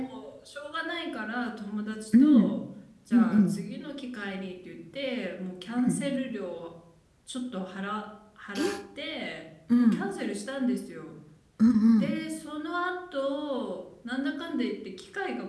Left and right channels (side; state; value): both; identical; correlation 1.00